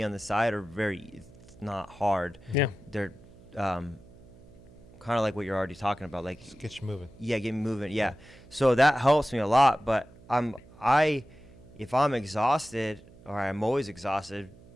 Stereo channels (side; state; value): right; noise; hum, 23 dB below the sound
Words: on the side are it's not hard. Yeah. They're kind of like what you're already talking about. Like, just get you moving. Yeah, get me moving. Yeah. So that helps me a lot, but if I'm exhausted, or I'm always exhausted